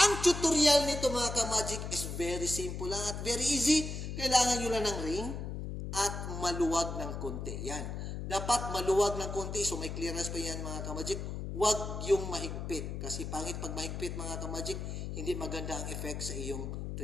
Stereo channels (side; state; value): left; noise; hum, 5 dB below the sound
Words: tutorial nito mga ka-magic is very simple lang at very easy. Kailangan nyo lang ng ring at maluwag ng konti. Yan. Dapat maluwag ng konti. So may clearance pa yan mga ka-magic. Huwag yung mahigpit. Kasi pangit pag mahigpit mga ka-magic, hindi maganda ang effect sa iyong